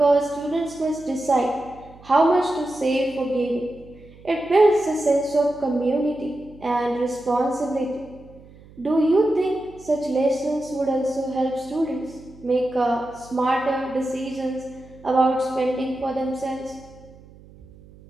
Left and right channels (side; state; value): right; noise; hum, 23 dB below the sound